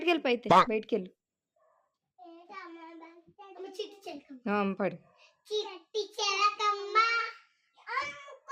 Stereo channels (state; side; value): identical; both; correlation 1.00